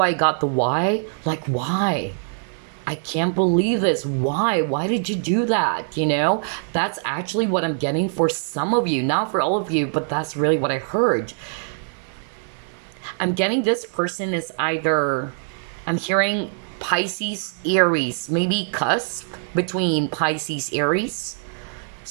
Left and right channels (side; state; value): left; silent; digital silence